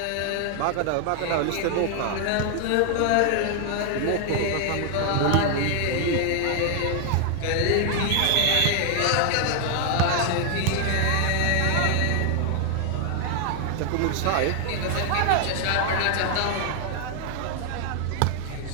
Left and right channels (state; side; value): different; both; correlation 0.00